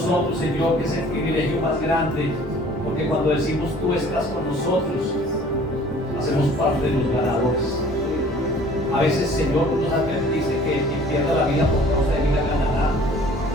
Señor, que es el privilegio más grande, porque cuando decimos tú estás con nosotros, hacemos parte de los ganadores. A veces, Señor, nos advertiste que quien pierda la vida por causa de vida ganará.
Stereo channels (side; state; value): both; normal; correlation 0.51